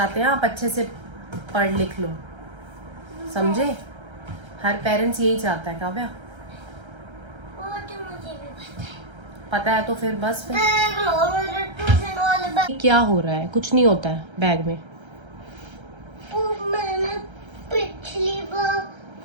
हैं आप अच्छे से पढ़ लिख लो, समझे। हर पेरेंट्स यही चाहता है काव्या। वो तो मुझे भी पता है तो फिर बस फिर। ट्यूशन वाले बैग। क्या हो रहा है? कुछ नहीं होता है बैग में। मैंने पिछली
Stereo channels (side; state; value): left; late; 1.3 ms